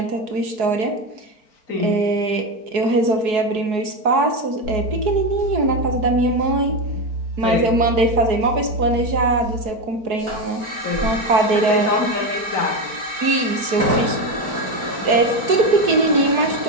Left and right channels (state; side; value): late; left; 4.7 ms